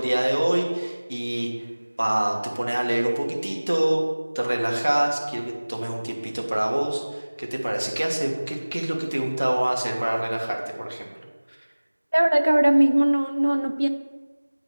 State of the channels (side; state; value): both; inverted; correlation -1.00